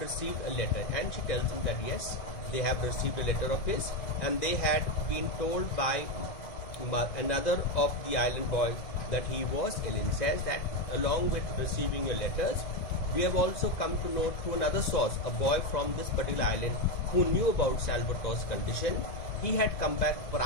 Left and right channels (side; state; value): right; late; 1.9 ms